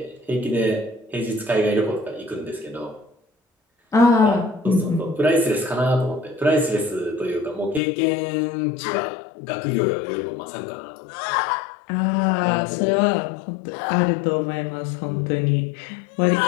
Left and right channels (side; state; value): right; drops out; at 7.8 s